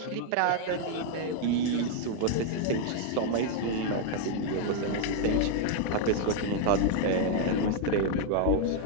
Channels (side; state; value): both; different; correlation 0.00